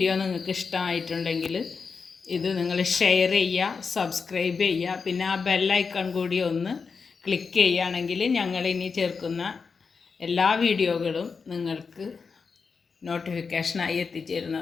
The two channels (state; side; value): quieter; right; 5.2 dB